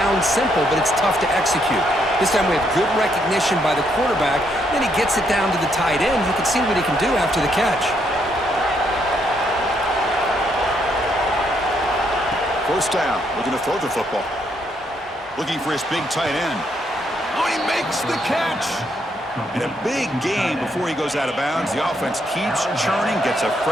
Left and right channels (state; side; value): normal; both; correlation 0.74